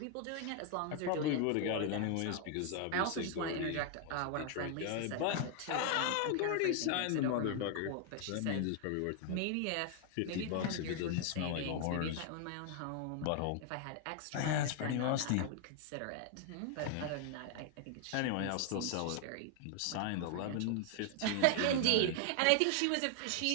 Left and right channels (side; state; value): both; different; correlation 0.00